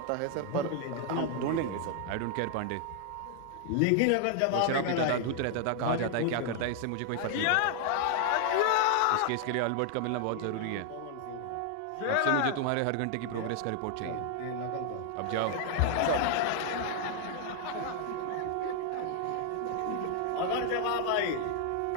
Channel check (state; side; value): different; both; correlation 0.00